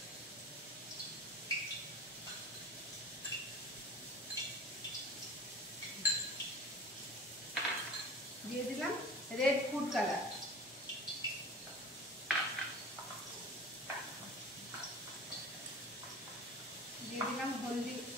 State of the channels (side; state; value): both; normal; correlation 0.38